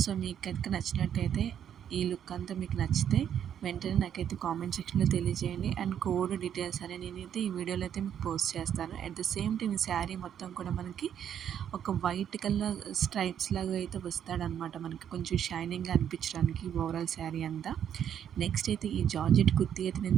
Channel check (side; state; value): left; quieter; 9.3 dB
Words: సో మీకు కనుక నచ్చినట్టయితే, ఈ లుక్ అంతా మీకు నచ్చితే వెంటనే నాకైతే కామెంట్ సెక్షన్లో తెలియజేయండి. అండ్ కోడ్ డీటెయిల్స్ అని నేనైతే ఈ వీడియోలో అయితే మీకు పోస్ట్ చేస్తాను. అట్ ద సేమ్ టైం ఈ శారీ మొత్తం కూడా మనకి ఒక వైట్ కలర్ స్ట్రైప్స్ లాగా అయితే వస్తాడనమాట, మనకి కొంచెం షైనింగ్గా అనిపించడానికి ఓవరాల్ శారీ అంతా. నెక్స్ట్ అయితే ఈ జార్జెట్ కుర్తీ అయితే